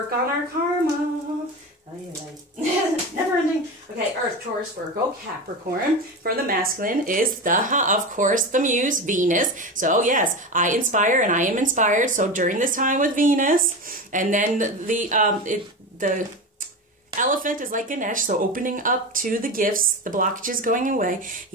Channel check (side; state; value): both; normal; correlation 0.23